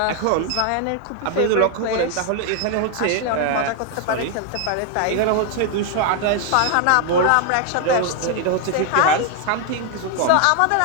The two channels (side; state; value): both; different; correlation 0.00